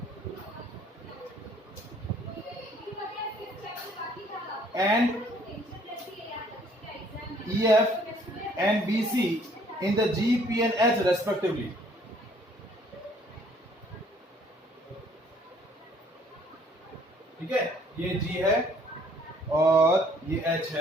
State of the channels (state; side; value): normal; both; correlation 0.60